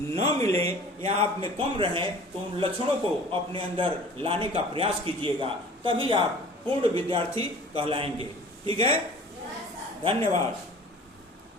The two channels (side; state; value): both; normal; correlation 0.45